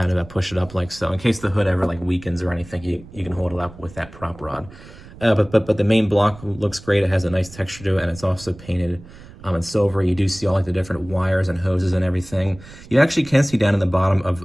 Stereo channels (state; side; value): noise; right; rumble, 19 dB below the sound